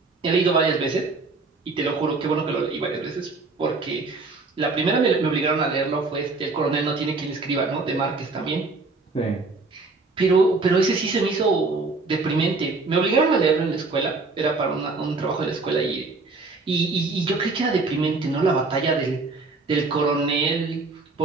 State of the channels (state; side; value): quieter; left; 3.8 dB